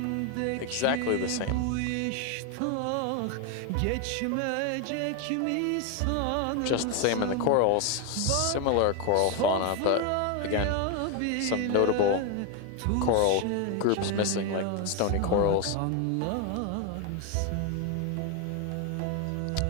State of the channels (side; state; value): both; different; correlation 0.01